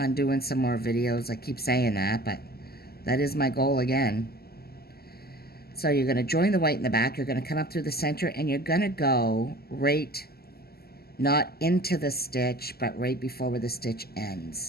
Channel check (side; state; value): right; late; 0.46 ms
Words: doing some more videos. I keep saying that, but that is my goal again. So you're going to join the white in the back. You're going to come up through the center, and you're going to go right, not into the stitch, but right before where the stitch